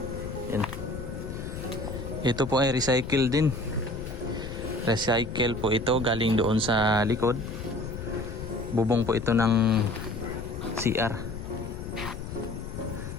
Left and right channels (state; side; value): noise; left; rumble, 8 dB below the sound